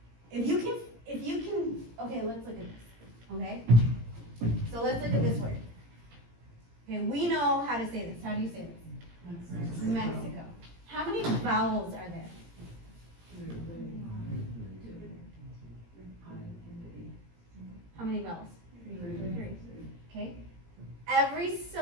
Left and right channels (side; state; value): left; late; 17 ms